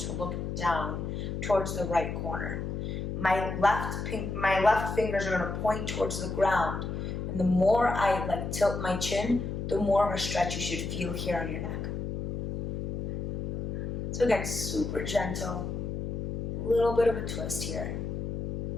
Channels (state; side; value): noise; left; hum, 3 dB below the sound